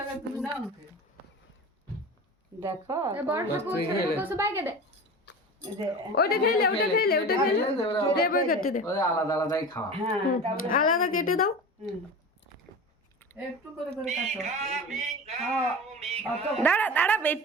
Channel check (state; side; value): normal; both; correlation 0.32